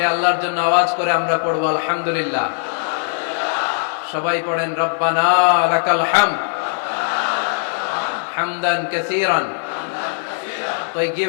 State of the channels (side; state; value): right; silent; digital silence